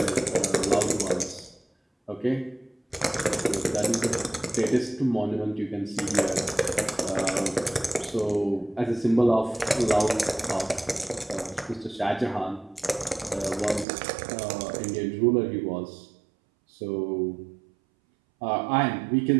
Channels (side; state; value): left; drops out; at 13.9 s